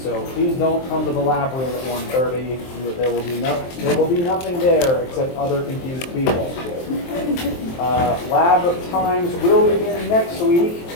so please don't come to the lab room at 1:30. There will be nothing there except other confused people. Lab times will begin next week,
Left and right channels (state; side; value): late; right; 23 ms